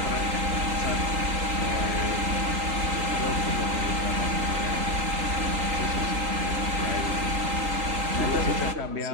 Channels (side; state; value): left; late; 3.8 ms